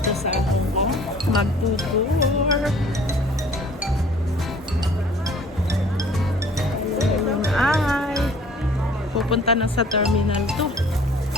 sa Hong Kong. Magtutour. Ayun ay pupunta na sa Terminal 2.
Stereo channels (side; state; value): both; normal; correlation 0.52